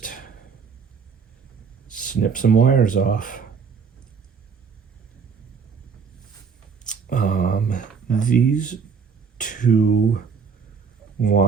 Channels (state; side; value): quieter; left; 5.9 dB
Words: snipped some wires off. These two